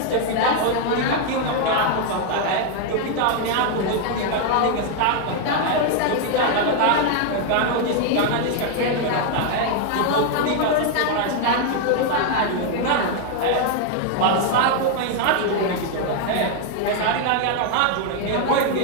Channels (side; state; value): both; different; correlation 0.00